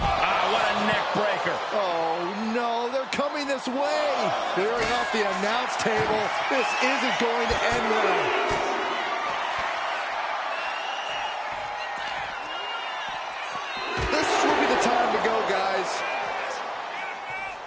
a neck breaker. Oh, no, they're coming this way. Clearing off the announce table. This isn't going to end well. This will be the time to go, guys.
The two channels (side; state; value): both; identical; correlation 1.00